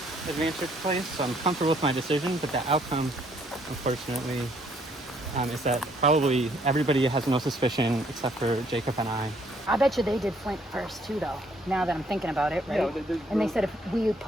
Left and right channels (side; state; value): both; normal; correlation 0.66